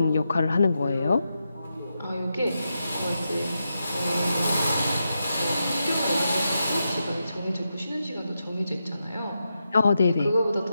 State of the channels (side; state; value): both; inverted; correlation -0.87